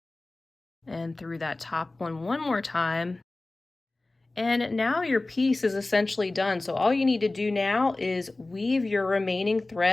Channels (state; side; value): quieter; right; 3.0 dB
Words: and through that top one more time. And now your piece is essentially done. So all you need to do now is weave your remaining